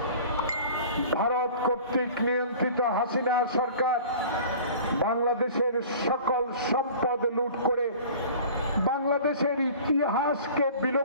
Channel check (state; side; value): inverted; both; correlation -0.43